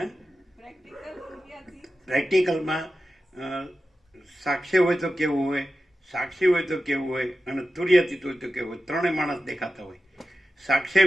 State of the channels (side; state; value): both; normal; correlation 0.93